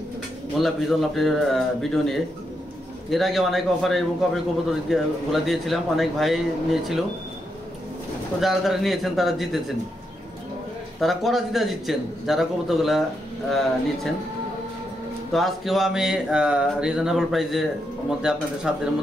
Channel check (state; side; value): normal; both; correlation 0.82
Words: মোল্লা বিজন লাভটির ভিডিও নিয়ে। এর আগে অনেক অফারে এবং কবে কবুতরগুলো দিয়েছিলাম, অনেক ভাই নিয়েছিল। তো যারা যারা নিয়েছেন তারা জিতেছেন, তারা করা জিতছেন যারা কবুতরগুলা নিচ্ছেন। তো আজকেও আমি রিজনেবল প্রাইসের মধ্যে আপনাদের সাধ্যের